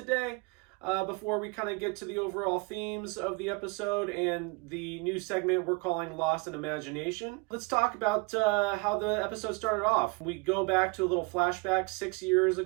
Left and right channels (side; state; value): left; quieter; 28.7 dB